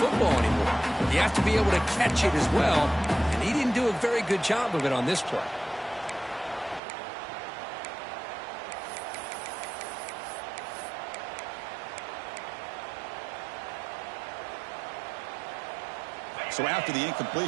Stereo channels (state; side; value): drops out; left; at 6.8 s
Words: anymore. You have to be able to catch it as well, and he didn't do a very good job of it on this play. So after the